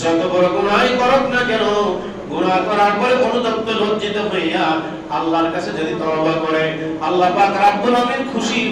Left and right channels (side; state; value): both; identical; correlation 1.00